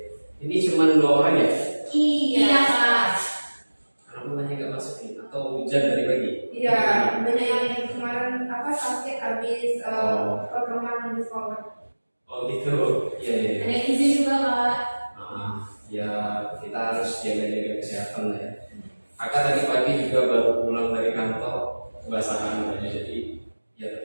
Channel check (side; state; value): both; inverted; correlation -1.00